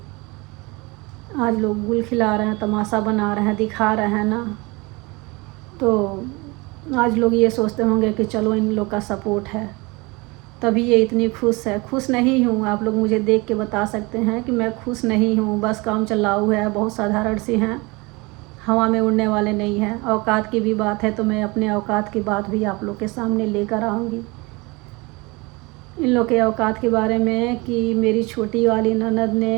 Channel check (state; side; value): quieter; left; 25.5 dB